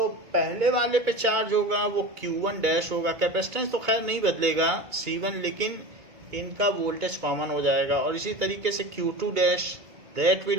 पहले वाले पे चार्ज होगा वो Q1 डैश होगा. कैपेसिटेंस तो खैर नहीं बदलेगा C1, लेकिन इनका वोल्टेज कॉमन हो जाएगा. और इसी तरीके से Q2 dash that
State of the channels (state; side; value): late; left; 1.8 ms